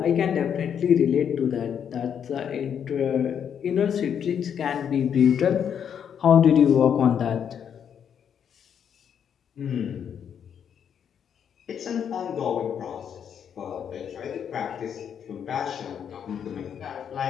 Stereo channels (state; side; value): quieter; right; 8.2 dB